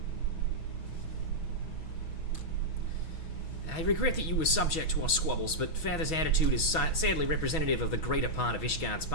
I regret that you were subject to our squabbles, but Father's attitude is sadly representative of the greater part of Ishgard's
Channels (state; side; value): late; right; 6.2 ms